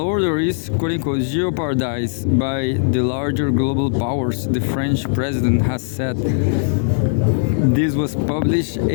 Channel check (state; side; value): silent; right; digital silence